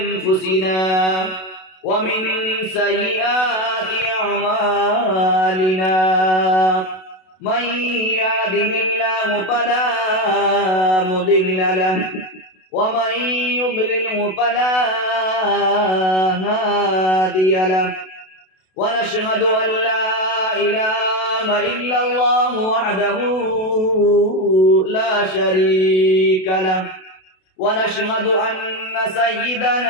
ومن سيئات أعمالنا من يهده الله فلا مضل له ومن يضلله فلا هادي له ونشهد أن لا إله إلا الله وحده لا شريك له ونشهد أن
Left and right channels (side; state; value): right; late; 32 ms